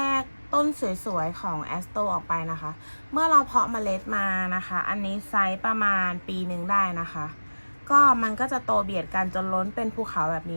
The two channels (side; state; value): both; inverted; correlation -1.00